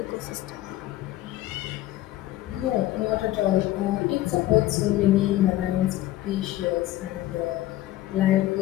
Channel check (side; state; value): right; quieter; 15.3 dB